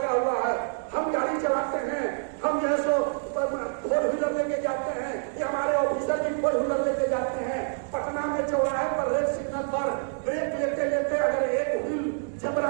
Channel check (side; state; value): left; silent; digital silence